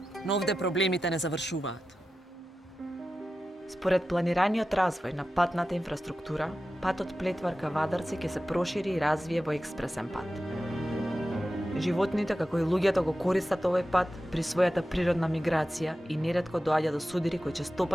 Но овде проблемите не завршуваат. Според планираниот развој на патната инфраструктура, патот Плетвар ка Вадарци ќе се прошири и развие во експресен пат. Животните, како и луѓето, го користат овој пат при својата природна миграција и неретко доаѓа до судири кои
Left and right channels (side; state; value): both; normal; correlation 0.93